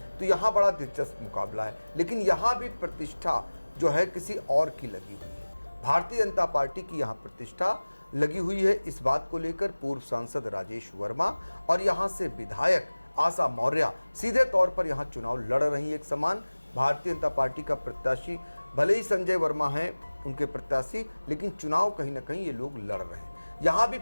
तो यहाँ बड़ा दिलचस्प मुकाबला है, लेकिन यहाँ भी प्रतिष्ठा जो है किसी और की लगी हुई है। भारतीय जनता पार्टी की यहाँ प्रतिष्ठा लगी हुई है। इस बात को लेकर पूर्व सांसद राजेश वर्मा और यहाँ से विधायक आशा मौर्य सीधे तौर पर यहाँ चुनाव लड़ रही एक समान। भारतीय जनता पार्टी का प्रत्याशी, भले ही संजय वर्मा हैं उनके प्रत्याशी, लेकिन चुनाव कहीं ना कहीं ये लोग लड़ रहे हैं। यहाँ भी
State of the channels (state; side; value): inverted; both; correlation -1.00